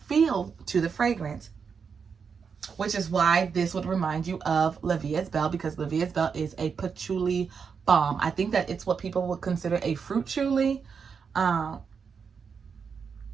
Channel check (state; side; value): quieter; left; 6.1 dB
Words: feel to the fragrance, which is why this would remind you of La Vie's Belle, because La Vie's Belle is a patchouli bomb. I think that it's what people would consider a fruit chouli.